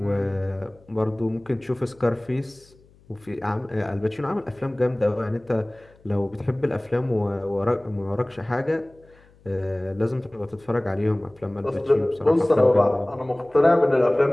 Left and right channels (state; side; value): noise; left; hum, 29 dB below the sound